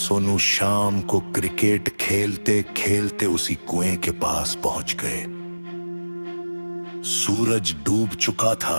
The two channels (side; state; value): both; inverted; correlation -1.00